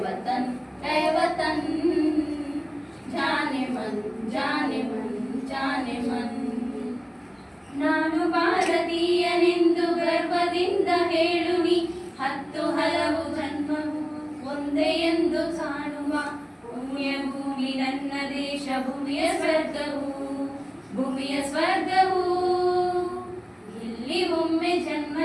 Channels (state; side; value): identical; both; correlation 1.00